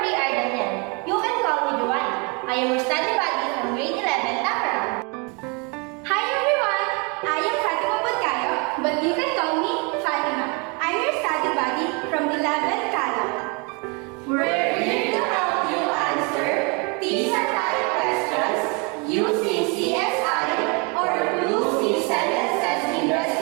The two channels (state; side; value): quieter; left; 32.0 dB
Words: Ardanian. You can call me Joanna. I am your study buddy from grade 11 Tamarang. Hi everyone, I am Fatima Budkayo, but you can call me Fatima. I'm your study buddy from 11 Calo. We're here to help you answer PISA type questions using CSI or Lucy Sentences